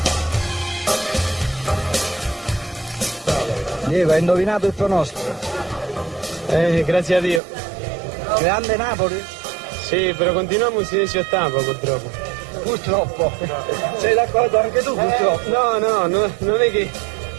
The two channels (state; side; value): drops out; left; at 7.4 s